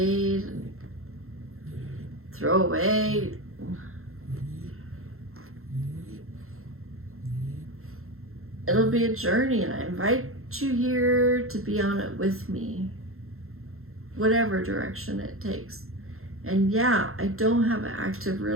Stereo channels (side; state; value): left; late; 0.62 ms